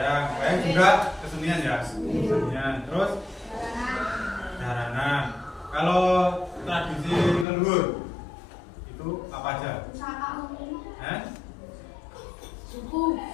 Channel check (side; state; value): right; drops out; at 7.5 s